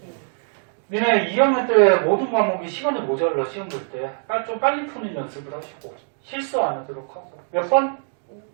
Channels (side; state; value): left; silent; 60 dB below the other